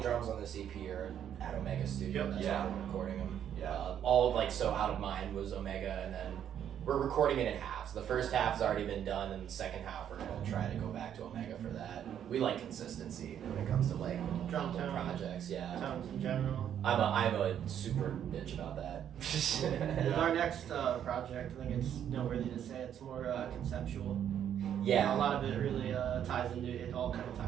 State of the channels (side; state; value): left; quieter; 9.6 dB